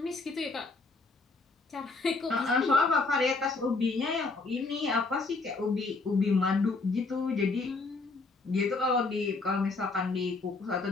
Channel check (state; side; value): quieter; right; 3.7 dB